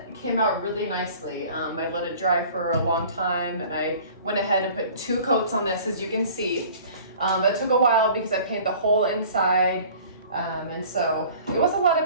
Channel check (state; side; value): inverted; both; correlation -0.47